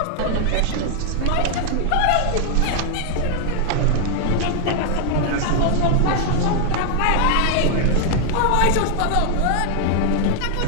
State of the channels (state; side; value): different; both; correlation 0.00